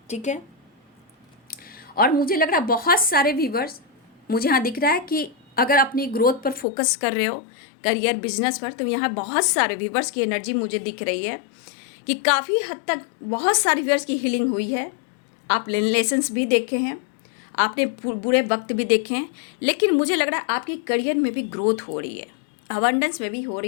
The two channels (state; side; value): drops out; right; at 6.7 s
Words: ठीक है, और मुझे लग रहा है बहुत सारे व्यूवर्स, मुझे यहाँ दिख रहा है कि अगर अपनी ग्रोथ पर फोकस कर रहे हो, करियर बिजनेस पर, तो यहाँ बहुत सारे व्यूवर्स की एनर्जी मुझे दिख रही है कि काफ़ी हद तक बहुत सारे व्यूवर्स की हीलिंग हुई है। आप लेसन्स भी देखे हैं, आपने बुरे वक्त भी देखे हैं, लेकिन मुझे लग रहा है आपकी करियर में भी ग्रोथ हो रही है, अबंडेंस में भी हो